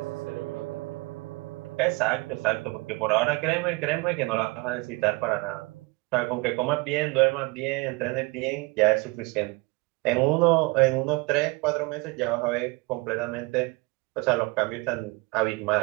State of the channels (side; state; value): left; quieter; 26.4 dB